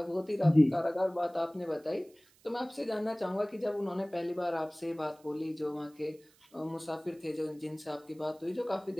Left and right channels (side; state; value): right; noise; hiss, 30 dB below the sound